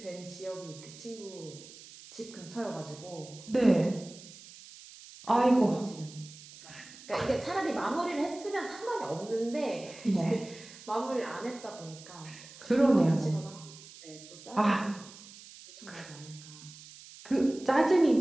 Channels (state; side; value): noise; right; hiss, 18 dB below the sound